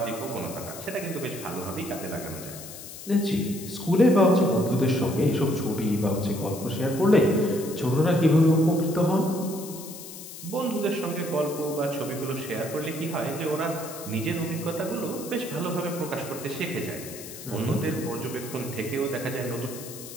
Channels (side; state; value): left; noise; hiss, 13 dB below the sound